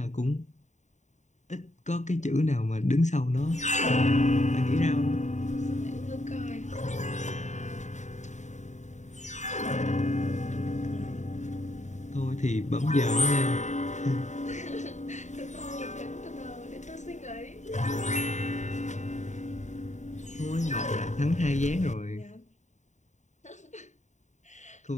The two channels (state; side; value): late; right; 0.34 ms